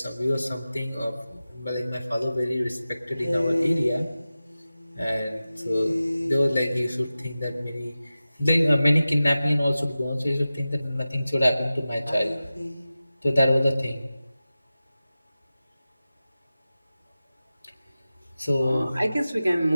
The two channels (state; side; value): inverted; both; correlation -0.95